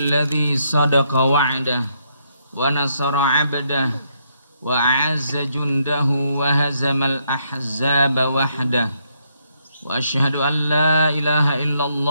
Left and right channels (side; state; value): both; inverted; correlation -0.75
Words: صدق وعده ونصر عبده وأعز جنده وهزم الأحزاب وحده وأشهد أن لا إله إلا